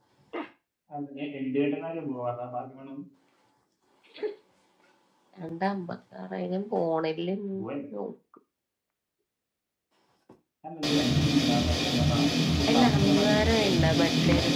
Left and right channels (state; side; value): identical; both; correlation 1.00